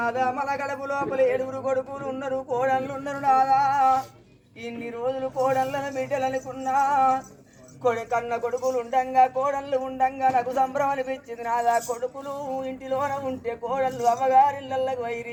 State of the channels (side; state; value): both; identical; correlation 1.00